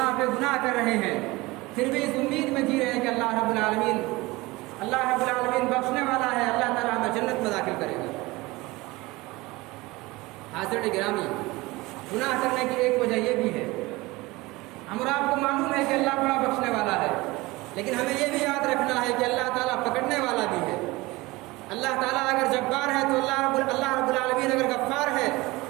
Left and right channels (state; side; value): quieter; left; 21.5 dB